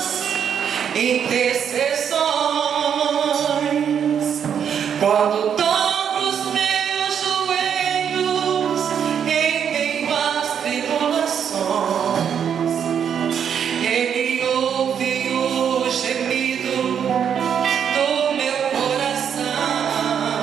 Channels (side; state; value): left; quieter; 8.0 dB